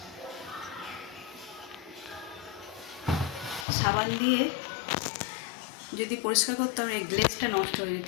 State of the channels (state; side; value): drops out; right; at 3.7 s